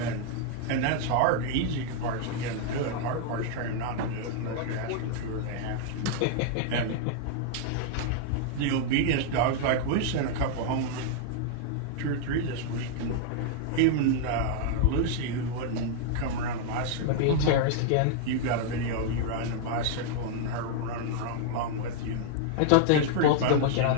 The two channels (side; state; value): both; different; correlation 0.00